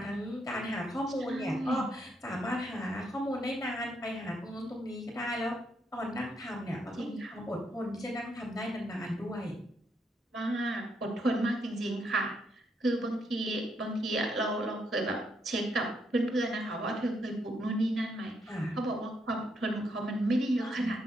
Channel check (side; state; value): both; normal; correlation 0.76